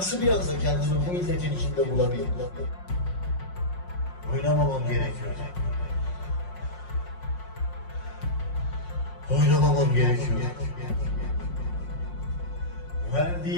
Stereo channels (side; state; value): right; late; 5.5 ms